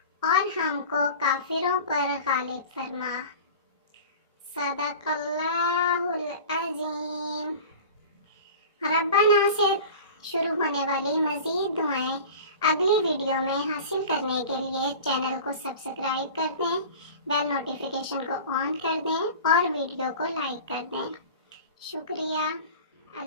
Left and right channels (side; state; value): both; inverted; correlation -0.37